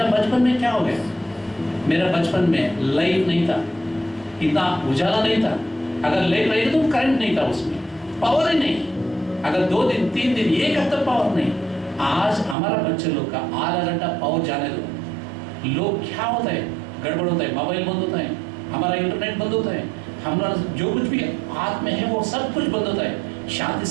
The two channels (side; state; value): left; drops out; at 12.6 s